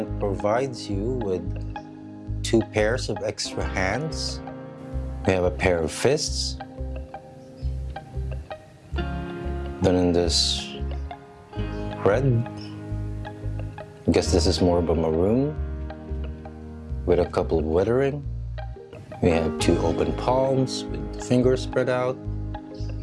provides you with 2 pairs of extra hands. We have a pair of fists, done in this red. I guess this is more of a maroon, with a couple of weathering. We have 2 open palms with fingers spread out.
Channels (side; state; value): both; identical; correlation 1.00